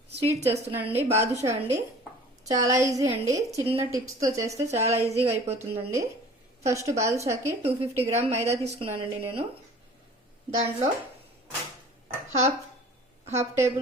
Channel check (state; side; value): normal; both; correlation 0.47